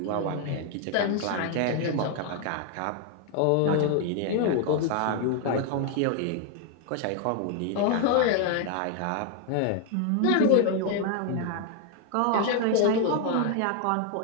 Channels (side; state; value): both; different; correlation 0.00